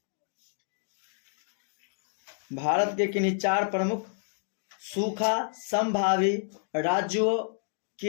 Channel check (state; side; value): silent; right; digital silence